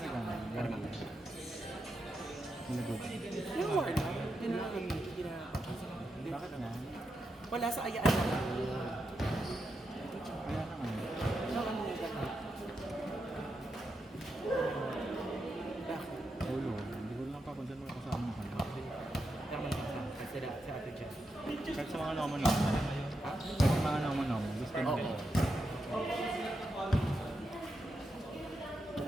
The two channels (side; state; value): both; normal; correlation 0.86